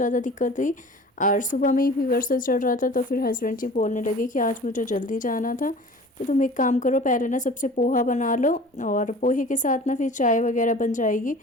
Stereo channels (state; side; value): normal; both; correlation 0.42